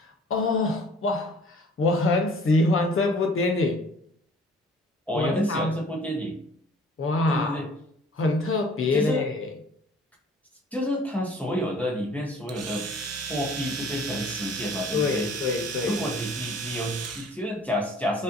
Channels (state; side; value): normal; both; correlation 0.52